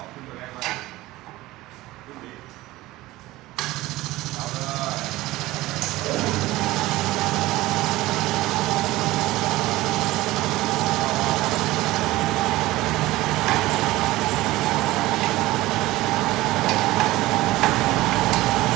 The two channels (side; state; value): left; quieter; 18.1 dB